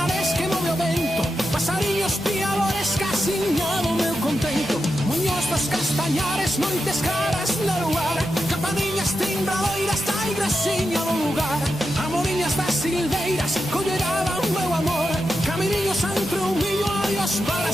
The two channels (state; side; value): normal; both; correlation 0.88